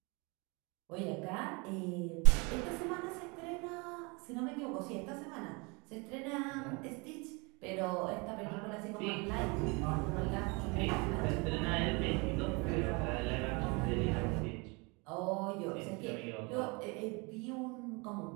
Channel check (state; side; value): quieter; left; 29.0 dB